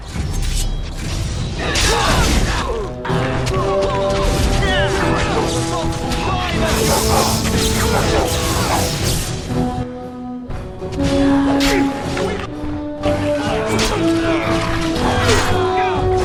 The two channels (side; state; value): both; identical; correlation 1.00